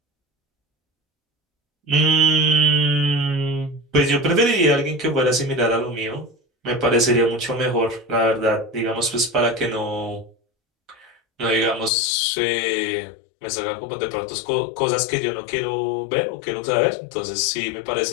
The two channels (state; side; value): drops out; right; at 11.9 s